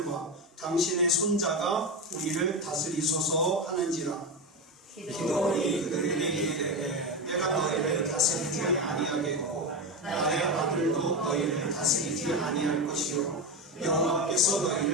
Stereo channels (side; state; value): both; normal; correlation 0.16